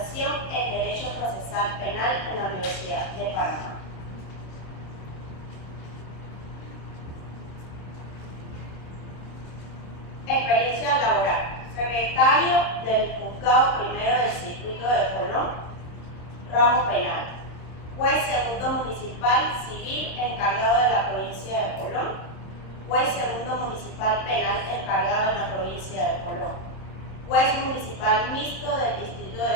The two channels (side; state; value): right; late; 26 ms